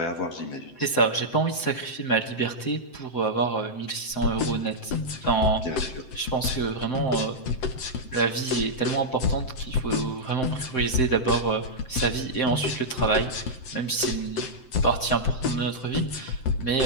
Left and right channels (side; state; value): right; late; 7.8 ms